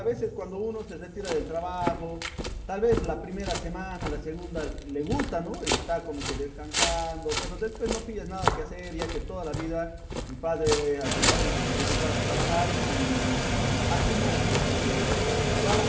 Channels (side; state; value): both; identical; correlation 1.00